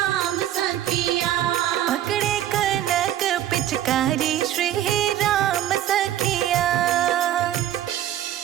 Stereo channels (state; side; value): quieter; left; 12.1 dB